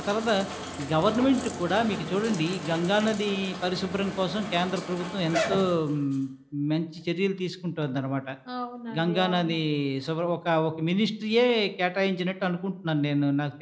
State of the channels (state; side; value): identical; both; correlation 1.00